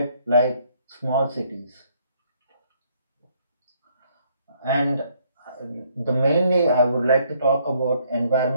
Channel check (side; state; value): both; inverted; correlation -0.67